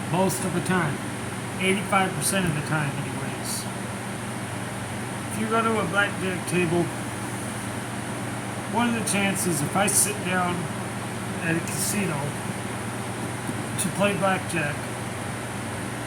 most of the time. 85% of the time, anyways. If you go to a blackjack table, what are the chances if I sit down at a casino to play blackjack,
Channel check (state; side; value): identical; both; correlation 1.00